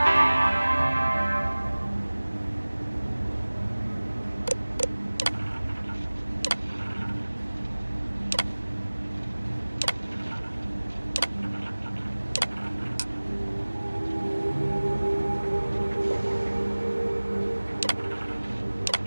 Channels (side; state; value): both; inverted; correlation -1.00